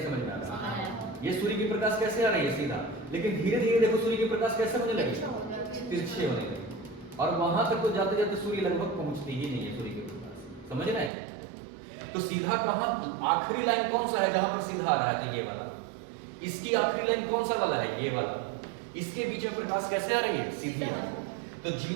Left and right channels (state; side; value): drops out; left; at 11.1 s